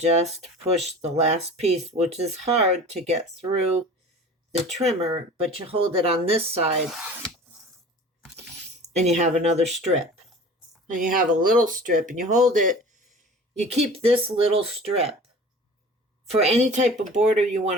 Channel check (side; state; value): both; normal; correlation 0.41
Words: push the last piece, which is hard to get through the trimmer, but you hold it on this side and you have another strip. And you have a little strip and you hold it. You keep this little strip for any type of border you want